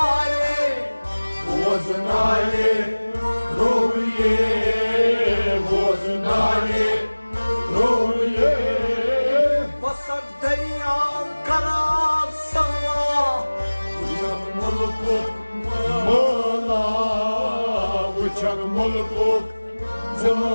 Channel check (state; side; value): inverted; both; correlation -1.00